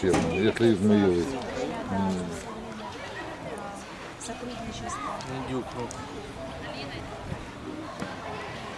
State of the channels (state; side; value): identical; both; correlation 1.00